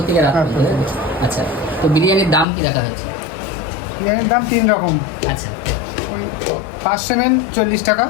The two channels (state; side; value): drops out; right; at 2.5 s